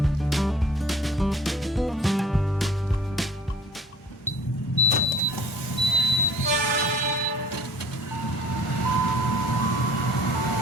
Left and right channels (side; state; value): both; normal; correlation 0.51